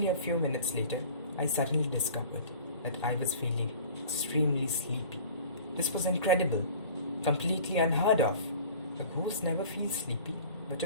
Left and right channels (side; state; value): both; inverted; correlation -0.43